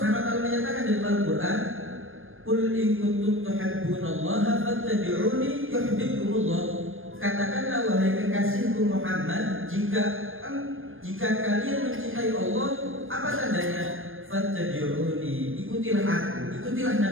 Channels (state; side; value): late; left; 0.59 ms